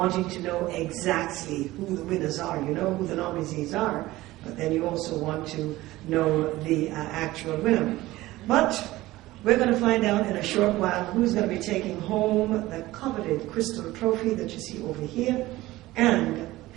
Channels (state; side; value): quieter; left; 17.7 dB